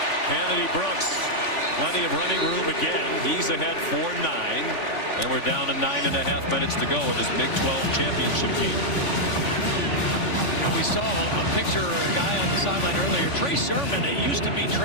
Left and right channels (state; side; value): late; right; 3.5 ms